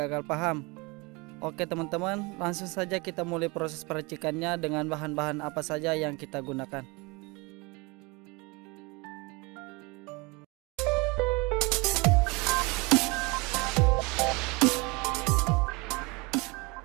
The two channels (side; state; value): left; quieter; 26.7 dB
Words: paham. Oke teman-teman, langsung saja kita mulai proses peracikannya dengan bahan-bahan apa saja yang kita gunakan.